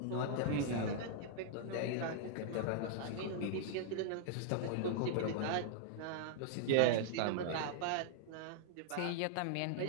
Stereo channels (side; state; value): both; different; correlation -0.01